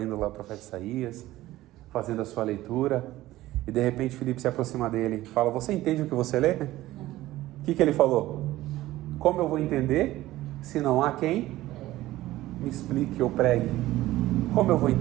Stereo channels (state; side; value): quieter; left; 16.2 dB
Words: lá o profeta Isaías, fazendo a sua leitura. E de repente Filipe se aproxima dele e fala: você entende o que você lê? O que ele falou? Como eu vou entender se não há quem me explique ou pregue? Como eu vou